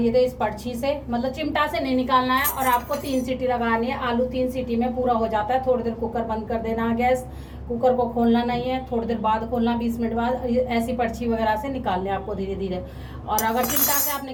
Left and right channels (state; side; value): identical; both; correlation 1.00